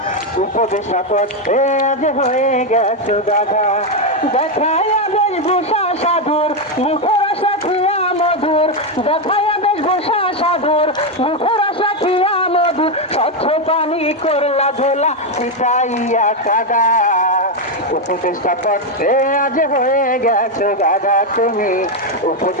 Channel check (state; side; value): normal; both; correlation 0.05